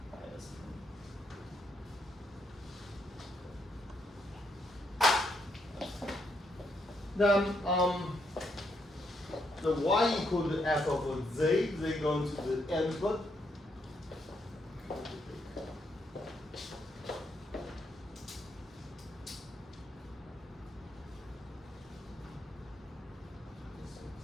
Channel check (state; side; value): normal; both; correlation 0.77